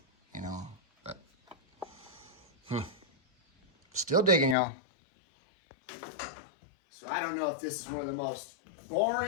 you know. But still digging, y'all. So I don't know if this is one of the most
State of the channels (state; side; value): drops out; right; at 4.5 s